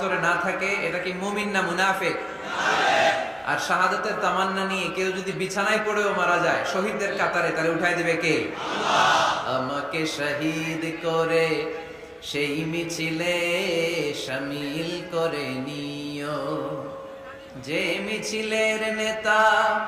না থাকে, এটা কি মুমিন না মুনাফিক? আর শাহাদাতের তামান্না নিয়ে কেউ যদি বিছানায় পড়েও মারা যায় শহীদদের কাতারে, তারে উঠাই দিবে কে? আমাকে শহীদ করে সেই মিছিলে শামিল করে নিও, যে মিছিলের নেতা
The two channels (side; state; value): both; identical; correlation 1.00